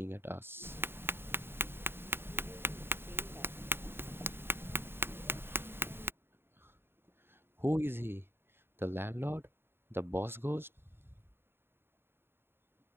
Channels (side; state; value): left; late; 0.11 ms